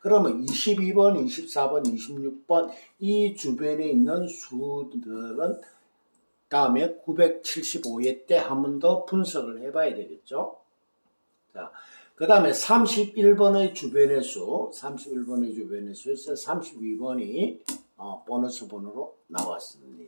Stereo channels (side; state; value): both; inverted; correlation -1.00